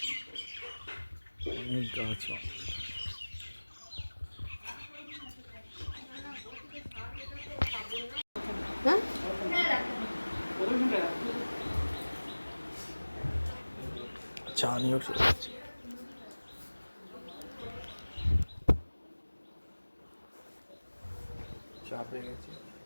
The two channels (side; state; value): both; inverted; correlation -1.00